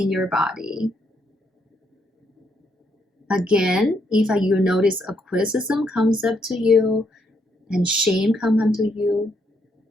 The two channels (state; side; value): normal; both; correlation 0.75